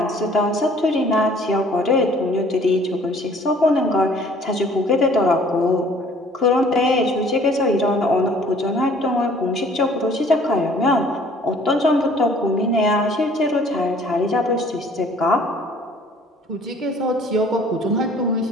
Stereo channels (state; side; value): normal; both; correlation 0.55